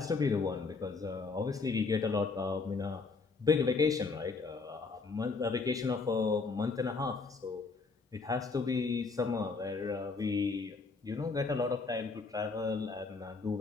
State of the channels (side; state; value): right; quieter; 4.3 dB